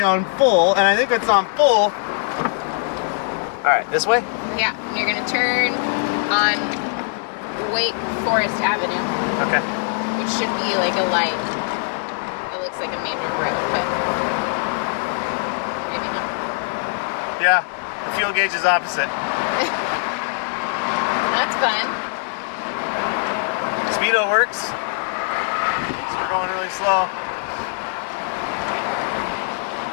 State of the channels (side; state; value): right; silent; digital silence